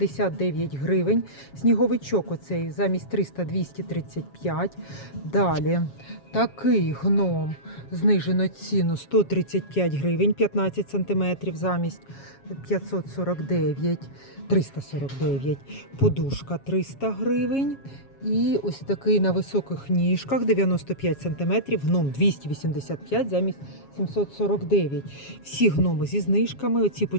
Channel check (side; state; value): right; late; 7.3 ms